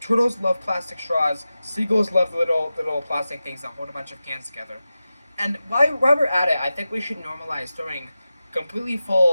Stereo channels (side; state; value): both; inverted; correlation -0.94